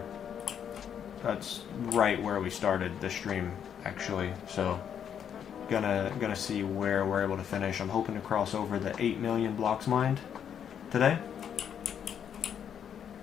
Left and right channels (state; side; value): quieter; right; 8.5 dB